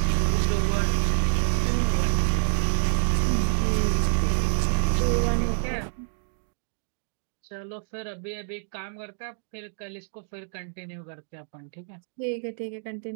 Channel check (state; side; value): silent; left; digital silence